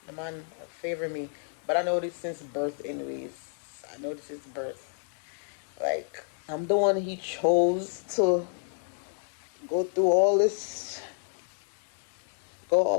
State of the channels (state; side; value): silent; right; 58 dB below the other